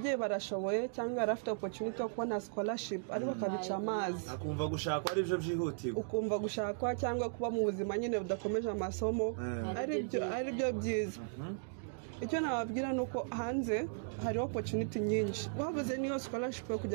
barashoboye cyangwa arafite opportunity yo kubona scholarship ariko akabica amazi akumva gushakwa ari byo byihutirwa ukumva gushakwa cyangwa kuba mu buzima nyine budakomeje amasomo ari byo byiza icyo nababwira nuko hanze hari opportunity nyinshi wabuze niyo scholarship yo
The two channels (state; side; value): silent; left; digital silence